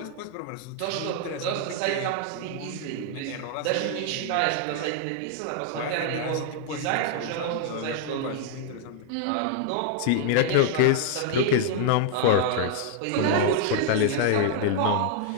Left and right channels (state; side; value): different; both; correlation -0.01